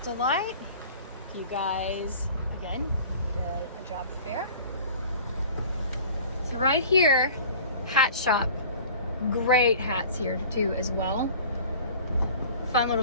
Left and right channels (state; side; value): inverted; both; correlation -0.44